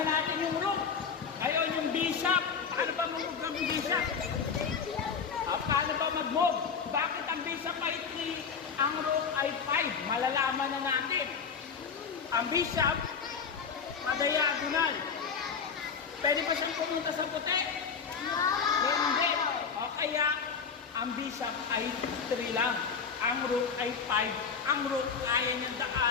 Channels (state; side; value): quieter; right; 6.1 dB